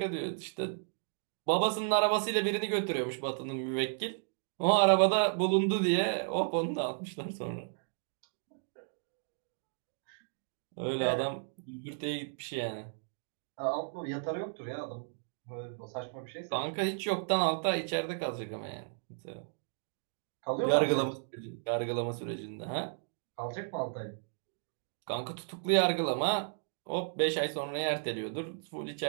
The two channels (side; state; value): left; silent; digital silence